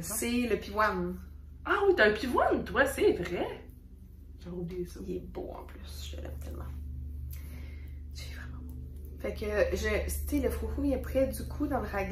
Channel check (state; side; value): identical; both; correlation 1.00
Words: C'est le pivoine. Ah oui, t'as un pivoine, toi, c'est vrai. J'ai oublié ça. Il est beau, en plus. Je l'aime tellement. C'est vraiment beau. Fait que, tu sais, le froufrou, il est près du cou dans le